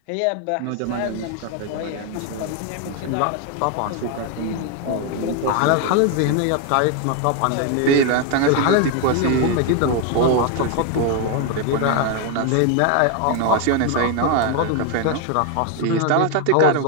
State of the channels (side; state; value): both; different; correlation 0.01